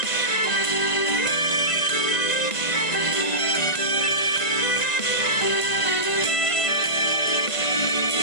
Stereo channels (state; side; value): late; right; 1.9 ms